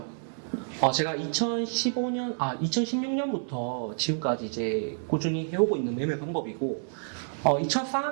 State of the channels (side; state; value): left; silent; 59 dB below the other